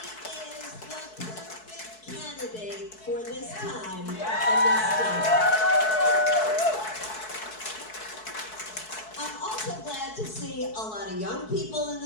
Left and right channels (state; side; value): late; right; 4.6 ms